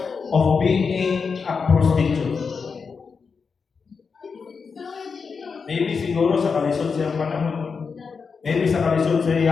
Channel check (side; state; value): right; quieter; 5.4 dB